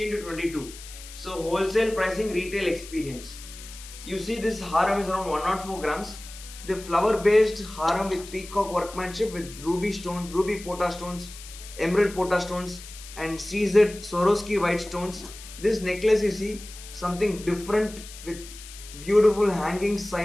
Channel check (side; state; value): left; noise; hiss, 15 dB below the sound